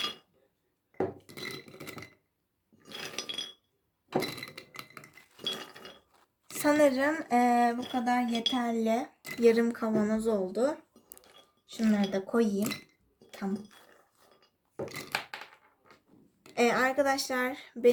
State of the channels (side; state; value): both; identical; correlation 1.00